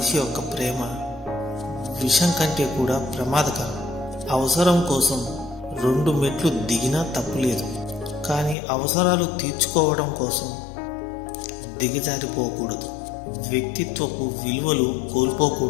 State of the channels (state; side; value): drops out; right; at 8.6 s